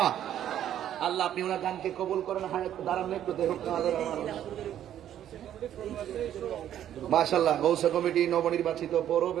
আল্লাহ আপনি ওনার গানকে কবুল করেন। হায়াত দাঁড়ান একটু, দেখুন মাশাআল্লাহ। গৌসা কমিটি নবনির্বাচিত পৌর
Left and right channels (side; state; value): left; quieter; 11.0 dB